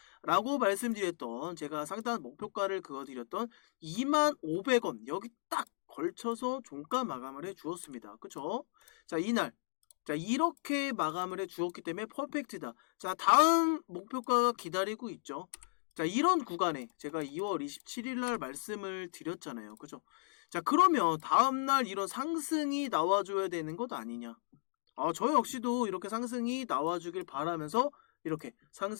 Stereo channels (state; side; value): silent; right; digital silence